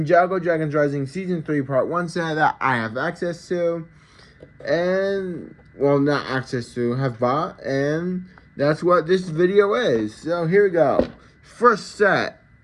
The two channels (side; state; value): both; identical; correlation 1.00